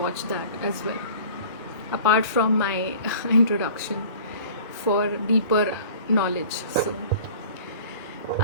that as well, apart from my introduction, for deeper knowledge. So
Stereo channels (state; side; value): inverted; both; correlation -0.45